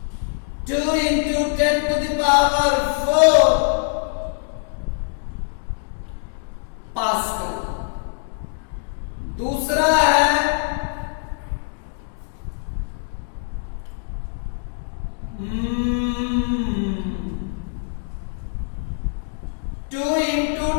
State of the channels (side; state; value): right; silent; digital silence